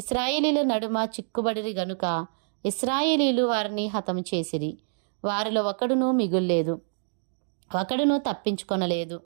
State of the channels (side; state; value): left; silent; digital silence